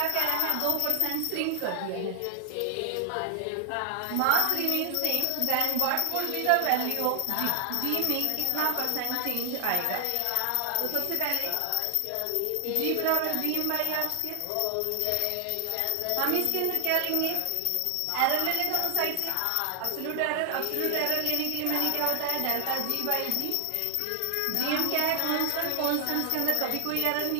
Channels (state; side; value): different; both; correlation 0.00